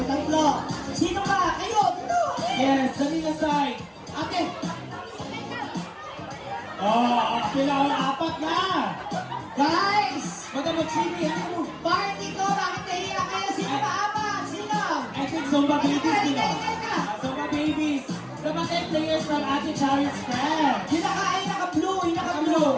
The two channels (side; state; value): both; identical; correlation 1.00